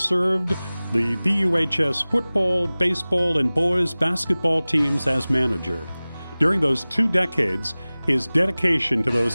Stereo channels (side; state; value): both; inverted; correlation -0.99